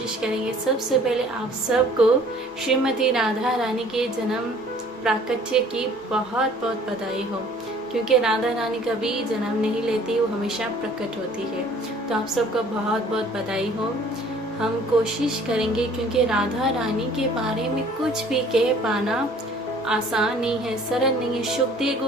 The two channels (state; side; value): normal; both; correlation 0.53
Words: करेंगे। सबसे पहले आप सबको श्रीमती राधा रानी के जन्म प्राकट्य की बहुत बहुत बधाई हो, क्योंकि राधा रानी कभी जन्म नहीं लेती, वो हमेशा प्रकट होती है। तो आप सबको बहुत बहुत बधाई हो। हम कोशिश करेंगे, क्योंकि राधा रानी के बारे में कुछ भी कह पाना आसान नहीं है, सरल नहीं है। सुखदेव